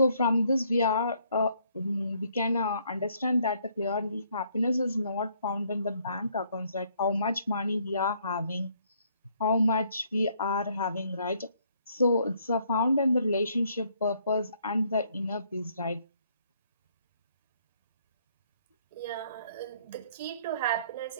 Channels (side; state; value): both; inverted; correlation -0.67